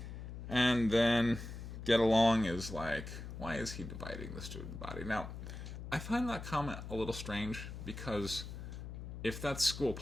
And then Get Along is like, why is he dividing the student body? Now, I find that comment a little strange because if that's school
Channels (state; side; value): noise; left; hum, 9 dB below the sound